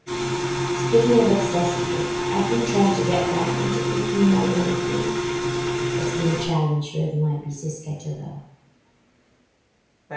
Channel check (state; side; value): identical; both; correlation 1.00